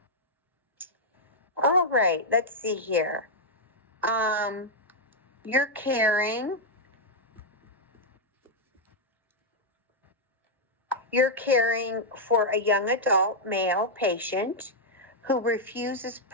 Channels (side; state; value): both; normal; correlation -0.04